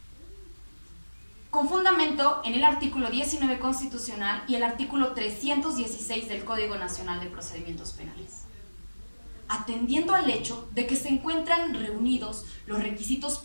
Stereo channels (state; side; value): inverted; both; correlation -1.00